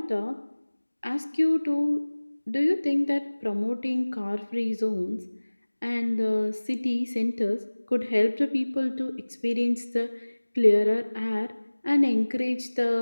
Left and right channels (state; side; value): inverted; both; correlation -1.00